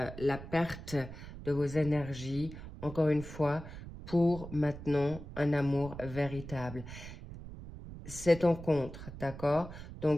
perte de vos énergies, encore une fois, pour maintenant un amour véritable. C'est en contre, d'accord?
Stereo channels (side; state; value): right; noise; rumble, 12 dB below the sound